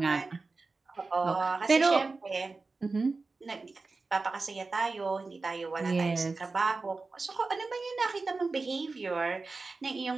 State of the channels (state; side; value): quieter; left; 3.8 dB